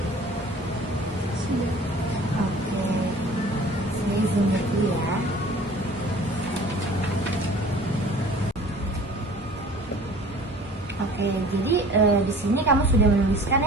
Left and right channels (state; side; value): normal; both; correlation 0.47